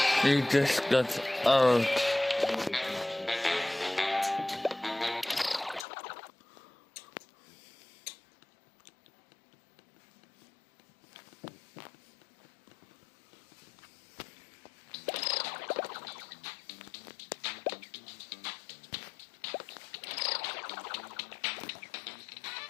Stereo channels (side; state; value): right; drops out; at 5.9 s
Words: You just got old.